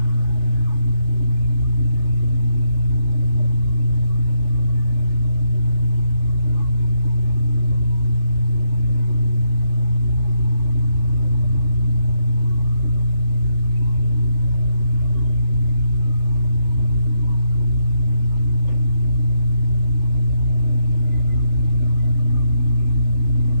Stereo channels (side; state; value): left; late; 3.4 ms